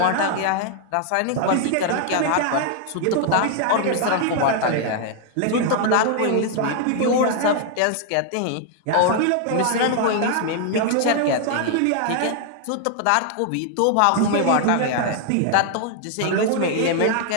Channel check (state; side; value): different; both; correlation 0.00